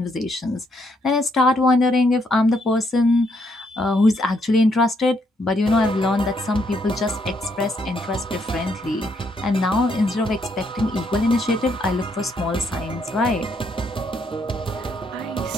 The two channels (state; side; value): normal; both; correlation 0.73